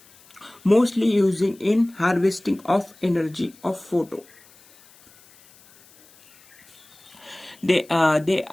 mostly using in harvesting of energy of photo. They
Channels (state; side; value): noise; left; hiss, 27 dB below the sound